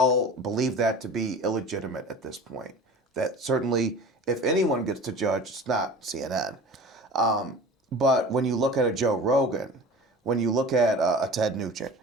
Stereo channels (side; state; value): both; normal; correlation 0.39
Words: believe that to be illegitimate at this point. That certainly, if anyone gets to judge, it's not CNN. But when you look at a Joe Rogan, when you look at a Ted Nugent,